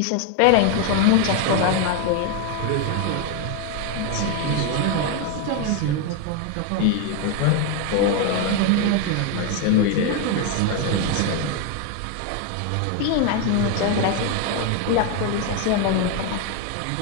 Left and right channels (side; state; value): both; different; correlation 0.01